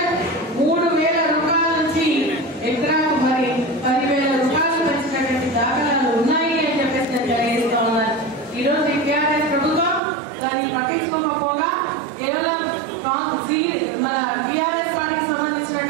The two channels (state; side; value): drops out; left; at 10.0 s